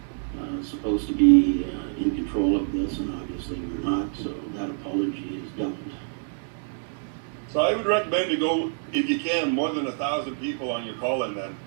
supposed to be in control of this, and obviously we're not, so that apology is doubled. So I would recommend to go, if you can, more than 1,000 people on your call-in then,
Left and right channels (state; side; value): silent; left; digital silence